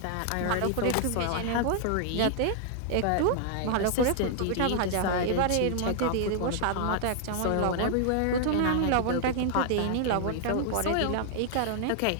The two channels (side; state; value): both; different; correlation 0.00